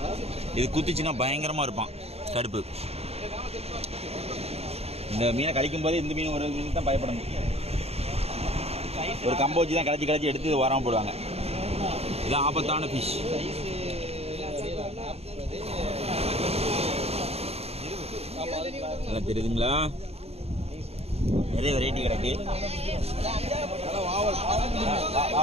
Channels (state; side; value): late; left; 0.30 ms